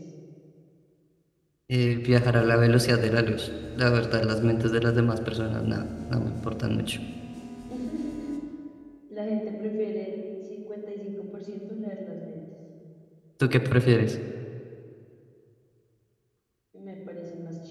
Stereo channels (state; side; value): identical; both; correlation 1.00